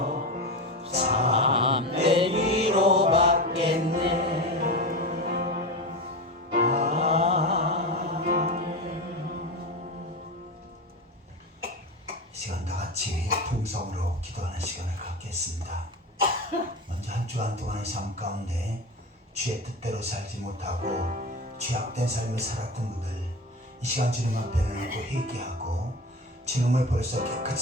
참된 위로받겠네. 이 시간 다 같이 풍성으로 기도하는 시간을 갖겠습니다. 먼저 한 주간 동안의 삶 가운데 주의 뜻대로 살지 못하고 죄악된 삶을 살았던 분들 이 시간 주님 앞에 내놓고 회개하고 주님을 벌써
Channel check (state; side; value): normal; both; correlation 0.23